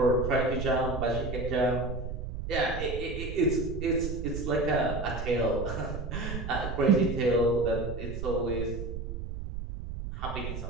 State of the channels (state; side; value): noise; right; rumble, 6 dB below the sound